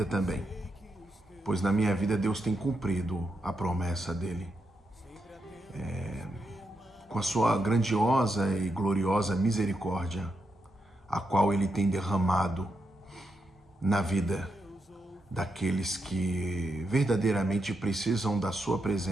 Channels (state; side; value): normal; both; correlation 0.83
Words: também, pois na minha vida Deus tem cumprido a promessa dele. Com a sua grandiosa e gloriosa misericórdia, a qual ele tem derramado na vida daqueles que verdadeiramente precisam da sua